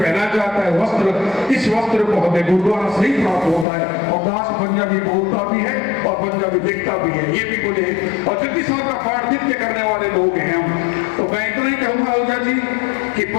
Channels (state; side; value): drops out; right; at 3.7 s